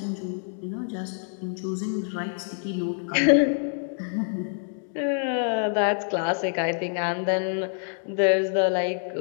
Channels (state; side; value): silent; right; 61 dB below the other